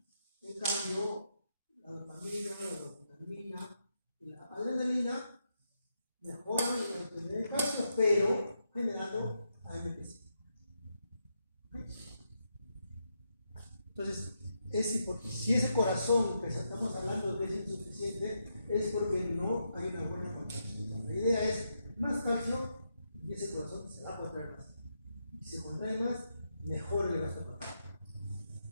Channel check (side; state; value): both; inverted; correlation -0.82